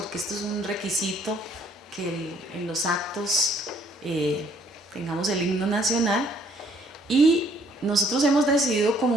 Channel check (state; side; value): normal; both; correlation 0.63